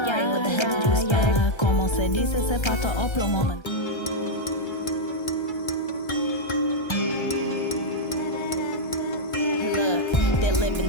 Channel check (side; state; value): right; late; 1.3 ms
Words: what the hell did you expect? Como se dice, se pato o plomo. Living,